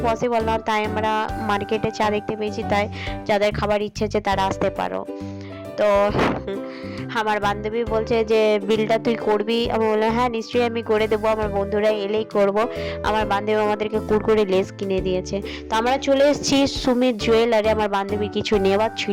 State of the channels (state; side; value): identical; both; correlation 1.00